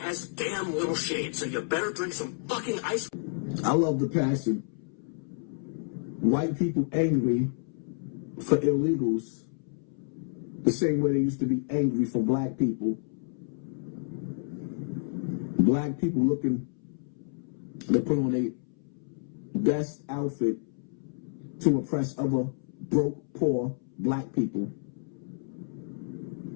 damn little shade, so you better drink some fucking ice. I love the passion. White people angry for illegals the same way they used to be angry for black people. Black people looking to put on a best outfit to impress other broke, poor black people.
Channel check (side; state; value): right; silent; 58 dB below the other